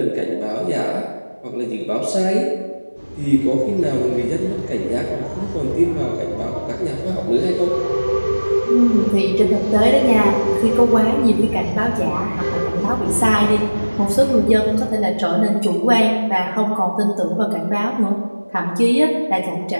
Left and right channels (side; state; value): both; inverted; correlation -1.00